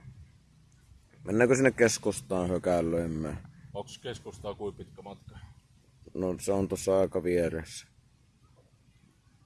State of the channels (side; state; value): both; identical; correlation 1.00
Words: Mennäänkö sinne keskustaan hökäilöimään? Onks keskustaa kuin pitkä matka? No se on tuossa aika vieressä.